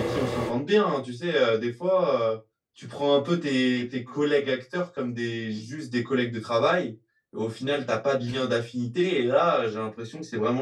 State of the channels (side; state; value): both; identical; correlation 1.00